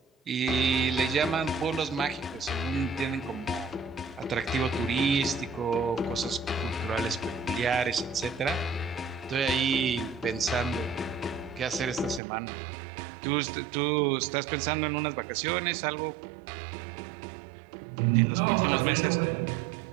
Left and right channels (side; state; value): left; drops out; at 12.2 s